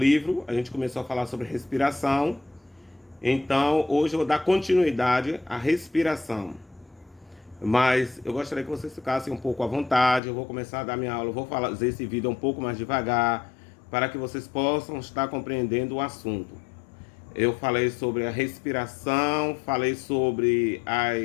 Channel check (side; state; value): right; drops out; at 10.2 s